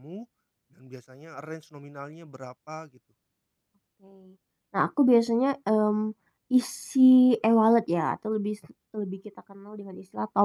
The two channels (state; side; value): identical; both; correlation 1.00